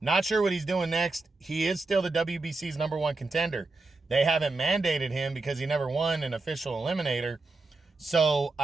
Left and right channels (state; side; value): quieter; left; 3.4 dB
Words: sure what he's doing next. He is still the WBC's number 1 contender. They haven't mandated him because he never won an official eliminator. So